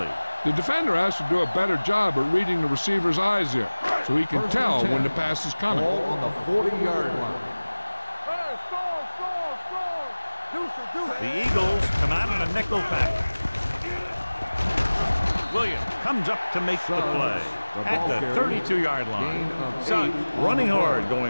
The defender has to do a better job at reading the receiver's eyes here, so he can tell when the pass is coming. Ball on the 40-yard line. Hey, score. The Eagles come out in a nickel package. Williams comes up to make the play at the 32-yard line. Suggs running hard,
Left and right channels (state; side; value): inverted; both; correlation -1.00